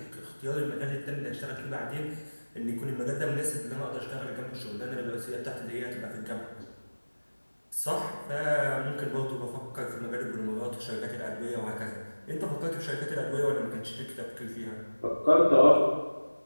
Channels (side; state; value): both; inverted; correlation -1.00